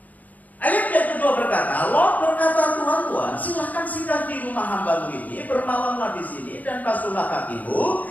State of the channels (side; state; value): right; late; 0.078 ms